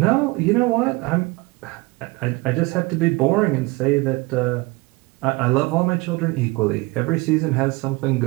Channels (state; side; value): quieter; left; 23.9 dB